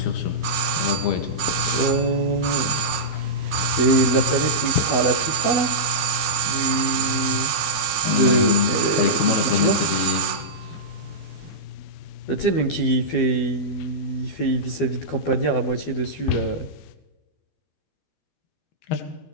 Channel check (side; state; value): right; late; 12 ms